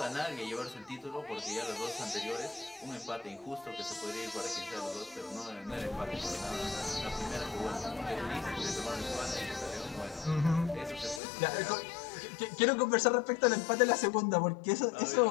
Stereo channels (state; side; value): drops out; right; at 11.2 s